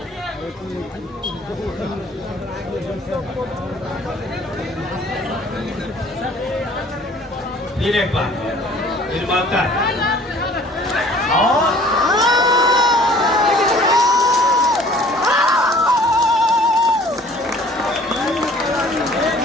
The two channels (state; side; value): normal; both; correlation 0.52